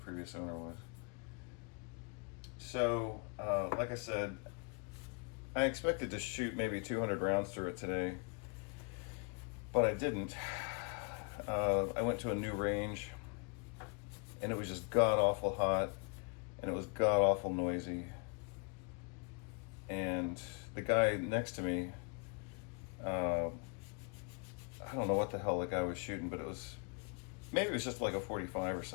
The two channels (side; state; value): right; quieter; 38.1 dB